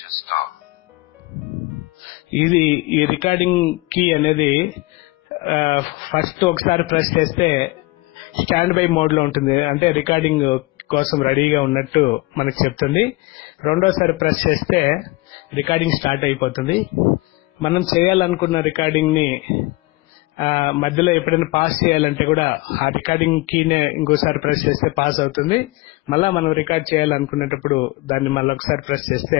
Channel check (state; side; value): quieter; right; 22.5 dB